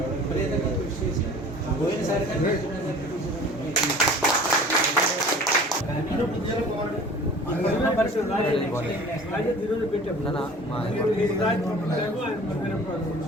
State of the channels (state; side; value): normal; both; correlation 0.45